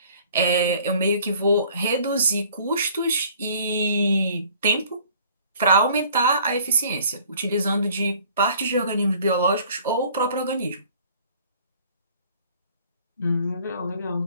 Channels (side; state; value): both; inverted; correlation -0.54